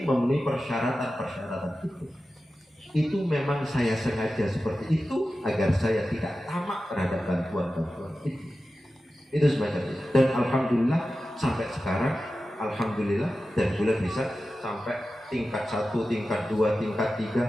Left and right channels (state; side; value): normal; both; correlation 0.93